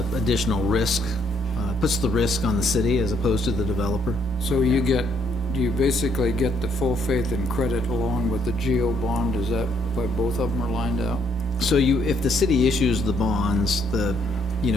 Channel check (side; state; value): both; normal; correlation 0.70